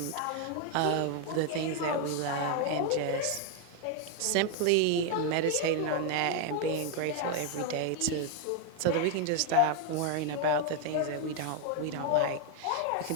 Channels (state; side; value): different; both; correlation 0.01